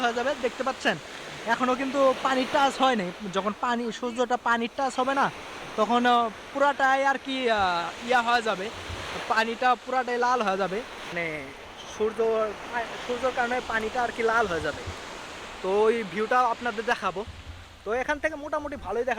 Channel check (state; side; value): identical; both; correlation 1.00